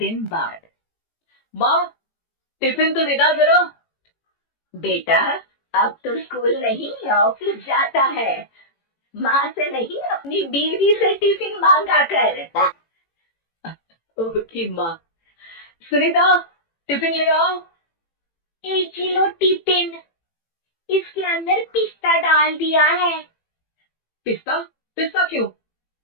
बाद माँ, टिफिन तो देना जरा। बेटा, अब तो स्कूल नहीं ऑफिस जाता है, माँ से नहीं अपनी बीवी से टिफिन मांगा कर। ओके माँ। सुनीता, टिफिन ले आओ। 1 किलो टिफिन, इसके अंदर पिस्ता डाल दिया है। पिस्ता? पिस्ता क्यों?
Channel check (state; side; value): late; right; 18 ms